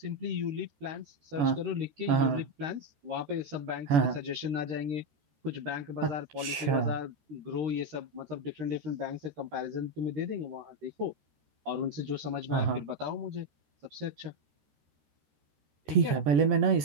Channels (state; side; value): late; left; 14 ms